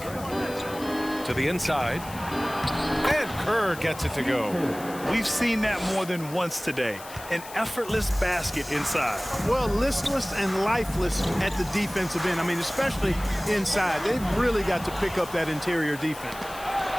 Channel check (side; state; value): left; noise; hiss, 16 dB below the sound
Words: to the inside. And Kerr gets it to go. We've seen that more than once today. An effortless basket inside. Well, listless and lifeless at the defensive end. I mean, especially inside. They've really got to pick up that interior defense.